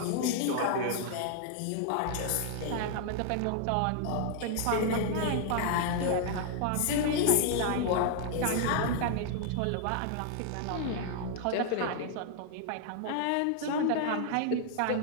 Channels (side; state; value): both; different; correlation 0.00